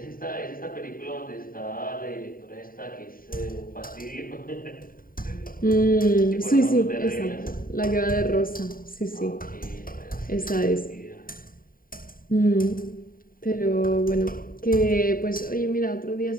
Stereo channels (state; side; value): late; right; 0.41 ms